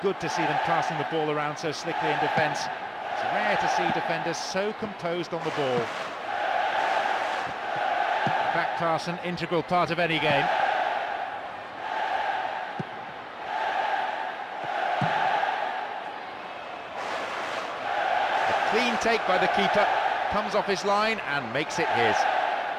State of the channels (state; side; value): identical; both; correlation 1.00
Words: good to see them passing the ball around so slickly in defence. It's rare to see defenders so composed on the ball. Back pass, an integral part of any game. A clean take by the keeper, comes off his line and makes it his.